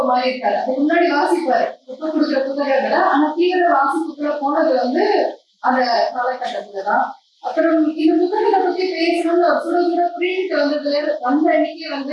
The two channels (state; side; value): identical; both; correlation 1.00